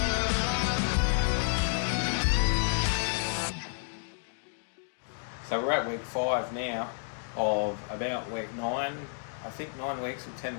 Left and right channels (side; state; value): right; silent; digital silence